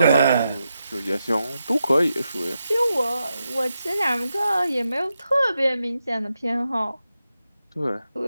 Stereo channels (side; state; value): both; inverted; correlation -0.87